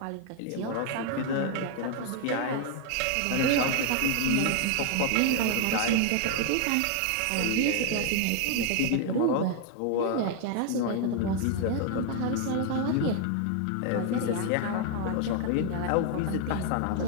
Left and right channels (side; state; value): both; different; correlation 0.00